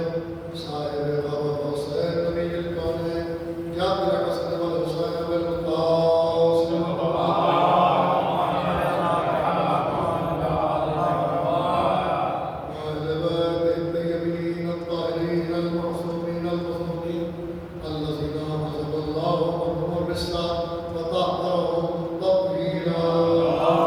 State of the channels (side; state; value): both; identical; correlation 1.00